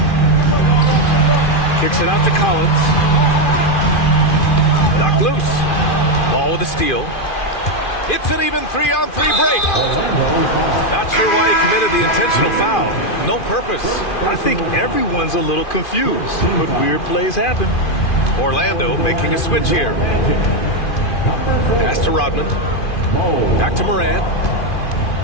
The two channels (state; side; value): late; right; 2.5 ms